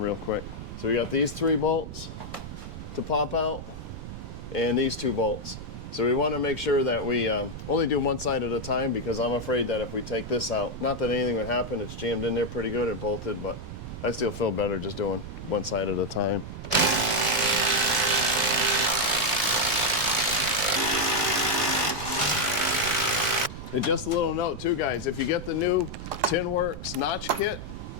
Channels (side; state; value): right; noise; rumble, 10 dB below the sound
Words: quick. So we got these 3 bolts to pop out and these 2 bolts. So we want to make sure that we only do one side at a time, because I'm afraid that if we take this out, not that anything would happen, it's jammed in there pretty good and bolted, but I still feel better just doing one side at a time. And just a little note too guys, if you get the new TinWorks notch kit,